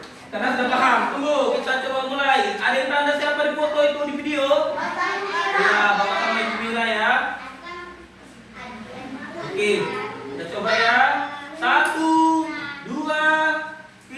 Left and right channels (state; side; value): identical; both; correlation 1.00